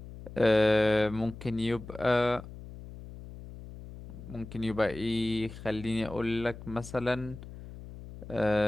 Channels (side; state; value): left; noise; hum, 14 dB below the sound